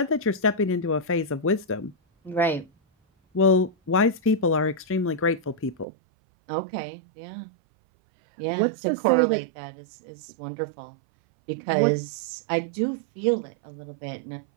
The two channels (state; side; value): drops out; left; at 5.9 s